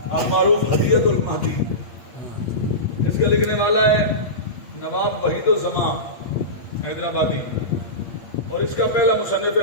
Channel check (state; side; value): late; right; 8.6 ms